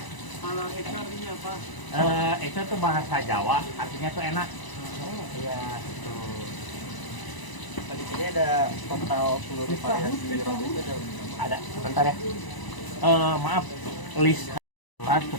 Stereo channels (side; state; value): right; late; 1.0 ms